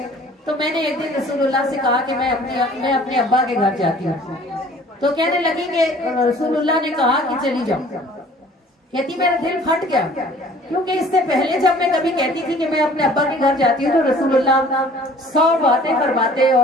تو میں نے ایک دن رسول اللہ سے کہا کہ میں اپنے ابا کے گھر جاتی ہوں، تو کہنے لگی کہ رسول اللہ نے کہا کہ چلی جاؤ۔ کہتی میرا دل پھٹ گیا، کیونکہ اس سے پہلے جب میں کبھی کہتی تھی کہ میں اپنے ابا کے گھر جاتی ہوں تو رسول اللہ 100 باتیں فرماتے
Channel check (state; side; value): normal; both; correlation 0.51